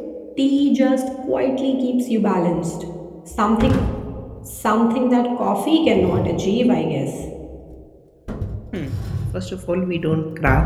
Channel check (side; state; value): both; identical; correlation 1.00